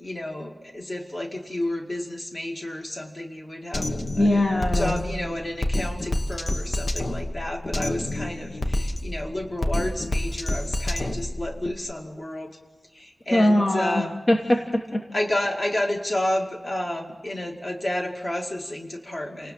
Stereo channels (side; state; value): both; normal; correlation 0.97